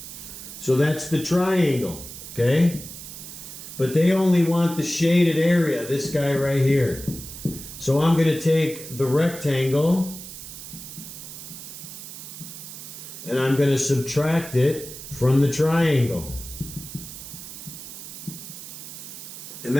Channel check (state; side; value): noise; right; hiss, 12 dB below the sound